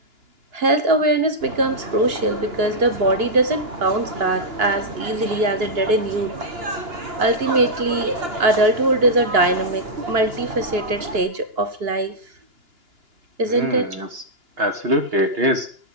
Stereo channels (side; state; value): left; late; 2.9 ms